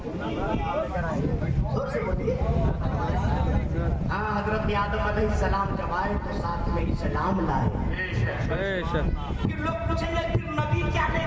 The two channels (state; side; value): identical; both; correlation 1.00